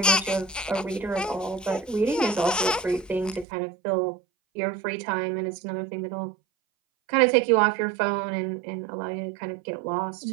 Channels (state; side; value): drops out; left; at 3.5 s